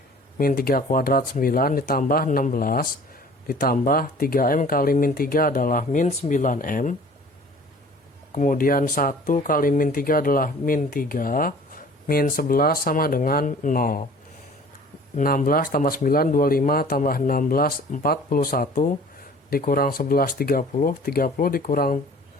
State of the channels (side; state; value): both; normal; correlation 0.48